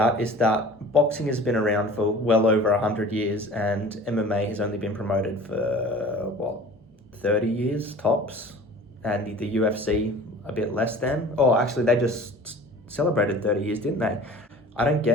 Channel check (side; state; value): both; normal; correlation 0.43